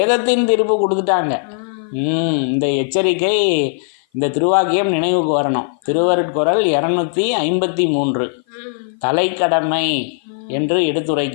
தீர்ப்பு கொடுத்துட்டாங்க. இந்த எச்சரிக்கை, இந்த திருவாக்கியம் நினைவுக்கு வரணும். திருவருட்குறள் 253 தலைக்கடமை என்று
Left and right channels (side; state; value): right; silent; 55 dB below the other